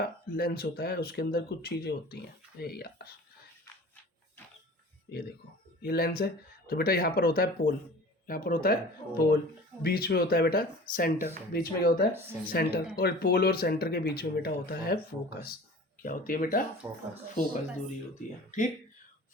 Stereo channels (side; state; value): both; normal; correlation 0.41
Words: लेंस होता है उसके अंदर कुछ चीजें होती हैं। यार ये देखो ये लेंस है तो बेटा यहाँ पर होता है पोल, यहाँ पर होता है पोल, बीच में होता है बेटा सेंटर, बीच में क्या होता है सेंटर, और पोल और सेंटर के बीच में बेटा होता है फोकस। क्या होती है बेटा, फोकस दूरी होती है, ठीक।